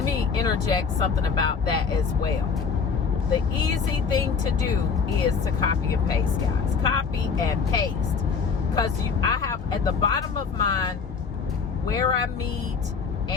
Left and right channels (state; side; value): quieter; right; 5.7 dB